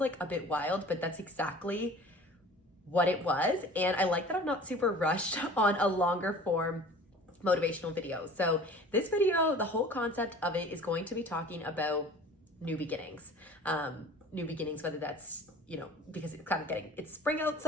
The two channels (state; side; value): normal; both; correlation 0.44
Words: a bit wild, but that's exactly what it was. And I like that I'm not super rushed on a longer form motivational video. So this video, the whole concept of it is going to be talking about new beginnings. New beginnings, whether that's, because it's spring